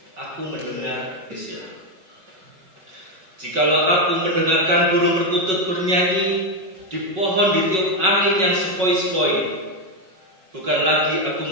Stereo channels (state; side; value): late; left; 5.4 ms